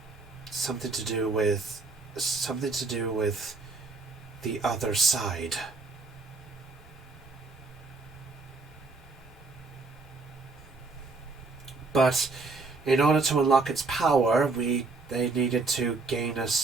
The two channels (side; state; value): left; quieter; 3.9 dB